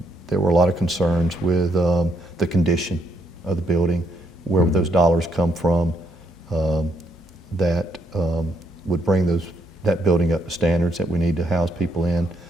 were a lot of concerns with the condition of the building, where would those dollars come from that would bring that building up to standards that we need to house people in,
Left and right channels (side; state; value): both; normal; correlation 0.74